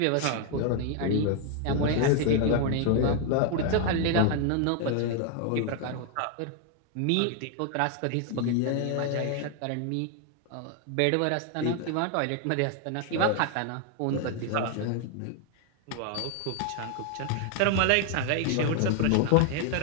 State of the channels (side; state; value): both; different; correlation 0.00